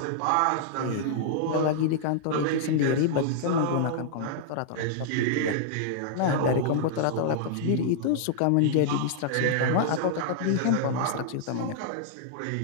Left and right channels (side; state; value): both; different; correlation -0.01